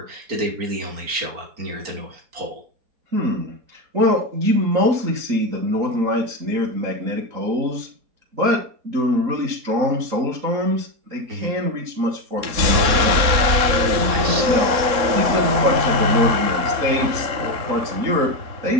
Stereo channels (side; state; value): left; late; 3.7 ms